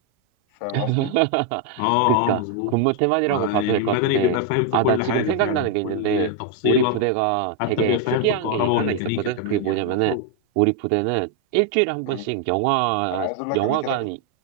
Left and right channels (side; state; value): both; different; correlation 0.01